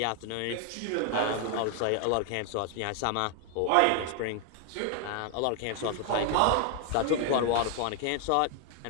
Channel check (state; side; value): different; both; correlation 0.00